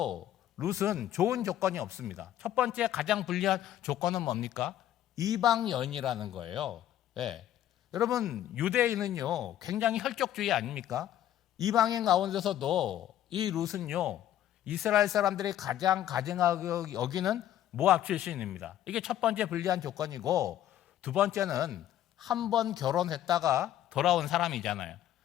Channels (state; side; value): quieter; right; 12.0 dB